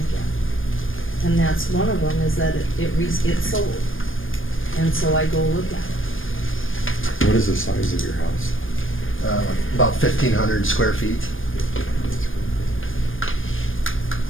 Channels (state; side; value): late; right; 0.59 ms